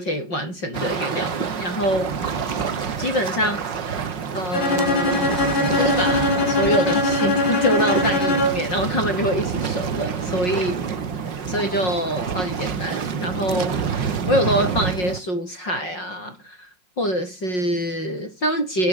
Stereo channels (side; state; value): right; late; 5.5 ms